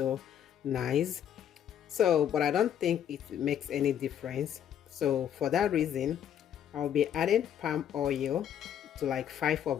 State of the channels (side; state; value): right; quieter; 9.7 dB